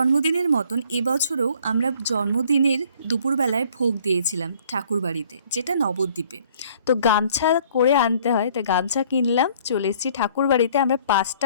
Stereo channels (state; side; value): inverted; both; correlation -0.58